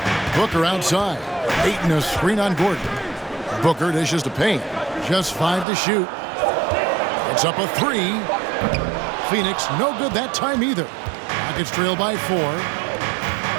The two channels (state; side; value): drops out; left; at 5.7 s